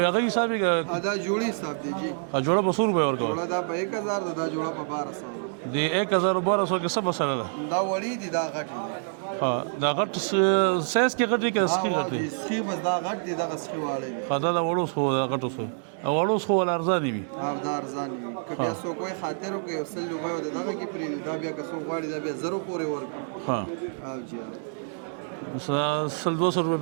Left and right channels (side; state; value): left; silent; digital silence